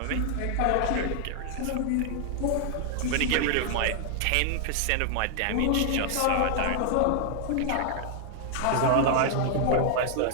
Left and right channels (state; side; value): different; both; correlation 0.00